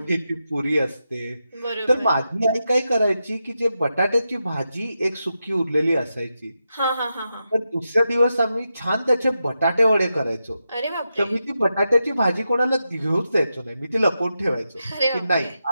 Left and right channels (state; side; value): inverted; both; correlation -0.88